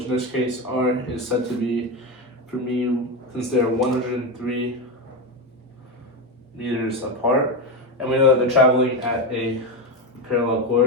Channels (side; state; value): both; normal; correlation 0.14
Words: in this case r is said to be, for me, since they're 103 meters apart, and we know that they're traveling at a parallel